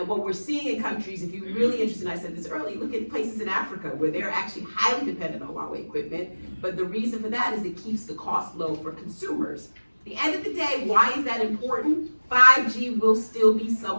what we're seeing in countries, if you're really interested, and I said this earlier, look at places in Africa where they're actually highly dependent on Huawei equipment, but the reason for that is it keeps the cost low for consumers. At the end of the day, why is that important? 5G will still be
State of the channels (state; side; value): inverted; both; correlation -1.00